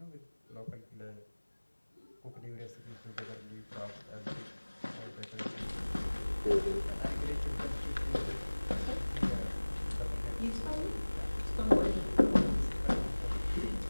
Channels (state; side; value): inverted; both; correlation -1.00